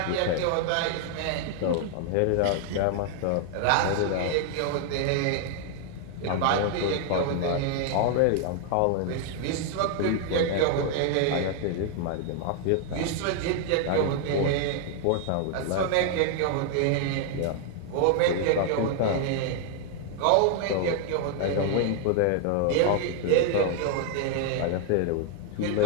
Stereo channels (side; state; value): both; different; correlation 0.00